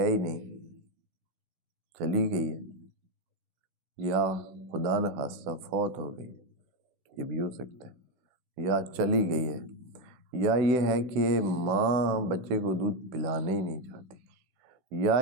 ہی نہیں، چلی گئی ہے، یا خدا نخواستہ فوت ہو گئی، یہ بھی ہو سکتا ہے، یا چلی گئی ہے، یا یہ ہے کہ ماں بچے کو دودھ پلانے ہی نہیں چاہتی، یا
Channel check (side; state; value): left; late; 16 ms